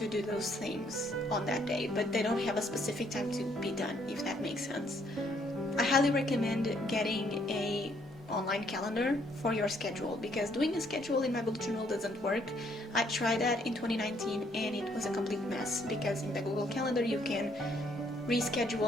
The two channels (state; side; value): normal; both; correlation 0.68